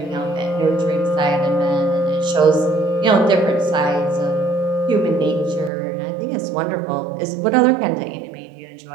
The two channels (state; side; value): drops out; left; at 5.7 s